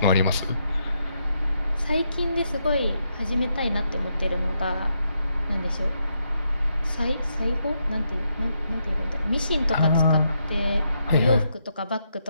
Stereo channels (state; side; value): inverted; both; correlation -0.80